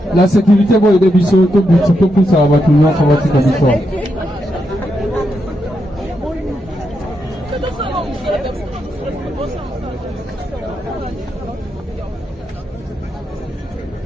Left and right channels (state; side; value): normal; both; correlation 0.83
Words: La sécurité va aider Bissot, tout le plus ça va tout le monde, ça va tout le monde.